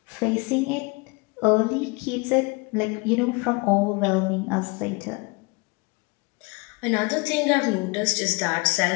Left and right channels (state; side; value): quieter; right; 27.9 dB